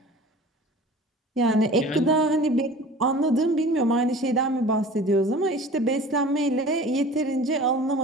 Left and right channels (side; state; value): both; normal; correlation 0.42